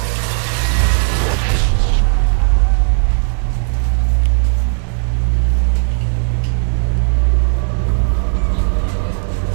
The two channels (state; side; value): silent; left; digital silence